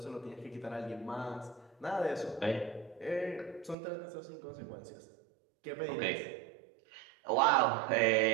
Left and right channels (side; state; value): left; drops out; at 3.8 s